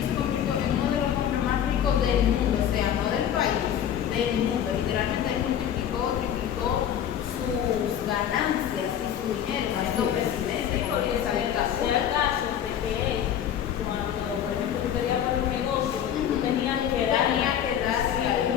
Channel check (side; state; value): right; quieter; 9.7 dB